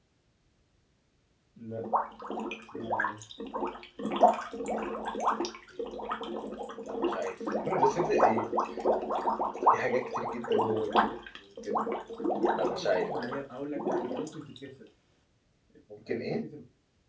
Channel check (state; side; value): identical; both; correlation 1.00